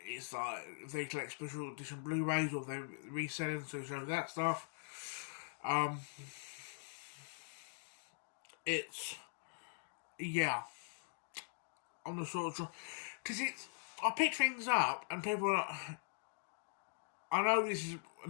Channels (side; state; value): right; silent; digital silence